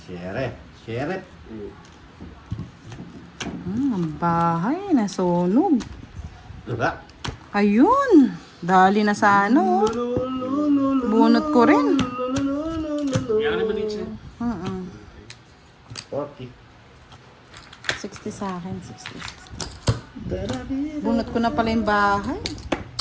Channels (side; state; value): both; identical; correlation 1.00